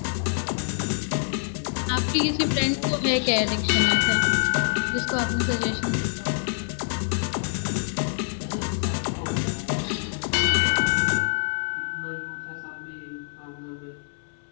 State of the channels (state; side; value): silent; right; 61 dB below the other